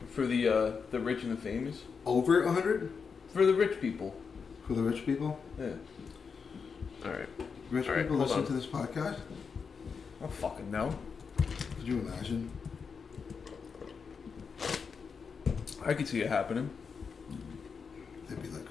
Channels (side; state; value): right; quieter; 5.7 dB